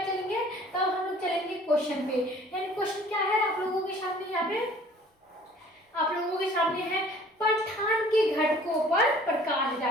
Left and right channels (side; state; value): both; normal; correlation 0.52